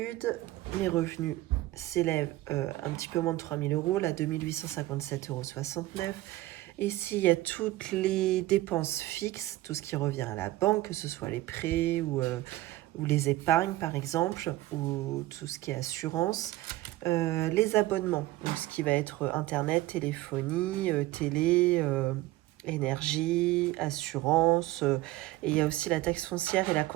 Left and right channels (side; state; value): left; quieter; 17.2 dB